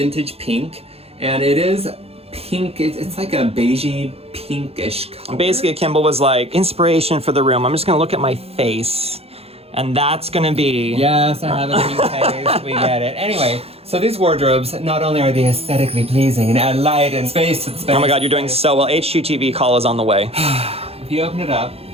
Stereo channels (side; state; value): left; late; 0.29 ms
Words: Pink, and it is pink. It's like a beigey pinkish color. Basically, Kimball was like, inspiration for the room. I'm just gonna look at my face, and that's gonna be... Yes, I have a pink face. We get it. Anyway, so these wardrobes, not only are they aesthetically pleasing and add light and space to the space. Oh my God, you're doing so well. HGTV call is on the way. If you open it up,